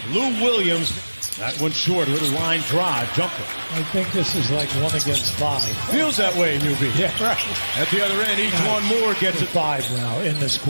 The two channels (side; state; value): both; inverted; correlation -1.00